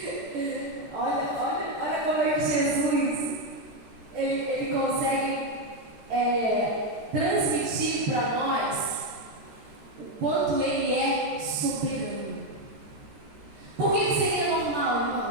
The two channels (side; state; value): left; late; 13 ms